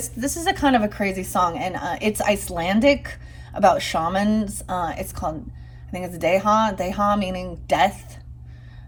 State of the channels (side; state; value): both; identical; correlation 1.00